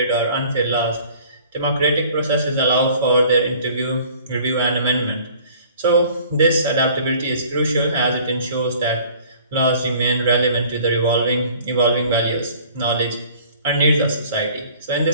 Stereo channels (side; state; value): both; inverted; correlation -0.51